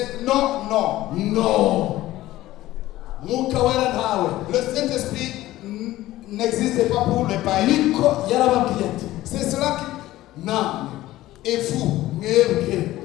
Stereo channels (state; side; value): quieter; right; 15.9 dB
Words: non. Le Saint-Esprit n'existe pas pour les païens. C'est cela qui... Non. Et vous